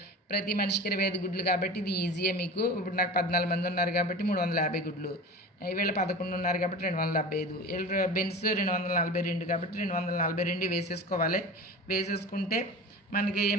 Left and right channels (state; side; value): normal; both; correlation 0.34